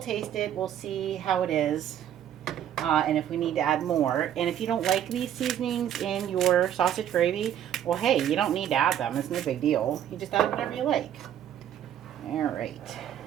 it. We'll see how it is. And if we need to add more. And if you don't like these seasonings in your sausage gravy, well, hey, you don't need to add them. It's no big deal. You just add whatever you like. All right.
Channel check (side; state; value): left; quieter; 10.4 dB